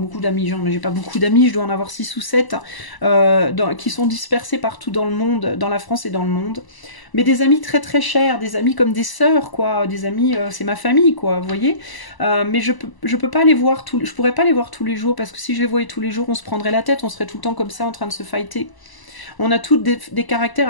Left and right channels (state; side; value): late; right; 1.0 ms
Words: d'amis, j'ai pas beaucoup d'amis, je dois en avoir 6 ou 7 qui sont dispersés partout dans le monde, dans la France et dans le monde. Mais des amis très très chers, des amis comme des sœurs, quoi, des amis, c'est ma famille, quoi, vous voyez. Mais je peux pas les voir je pourrais pas les voir tous les jours, parce que si je les voyais tous les jours, on se prendrait la tête, on serait tout le temps comme ça en train de se fighter. On a toutes des caractères